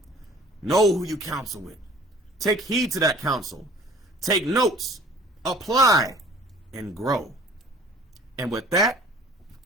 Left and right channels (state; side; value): normal; both; correlation 0.50